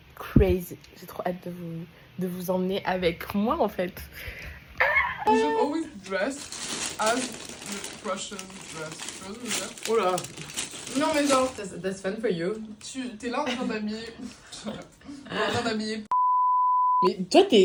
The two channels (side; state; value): both; identical; correlation 1.00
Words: Crazy. J'ai trop hâte de vous emmener avec moi, en fait. You should always dress as the Russians dress. Tu vois ce que je veux dire? Oh là. Non mais genre, That's fun for you. t'es là en train d'habiller... en train d'habiller... Mais toi,